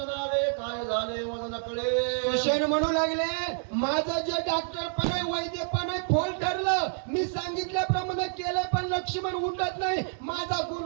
आले काय झाले मला नकळे. सुषेण म्हणू लागले माझं जे डॉक्टर पण आहे वैद्य पण आहे फोल ठरलं मी सांगितल्याप्रमाणे केलं पण लक्ष्मण उठत नाही माझा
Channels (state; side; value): silent; left; 59 dB below the other